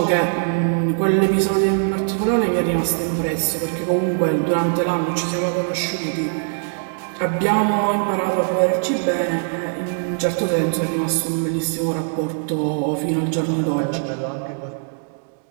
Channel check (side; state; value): left; silent; digital silence